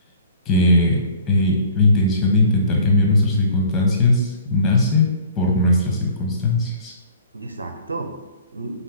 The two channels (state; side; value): inverted; both; correlation -0.49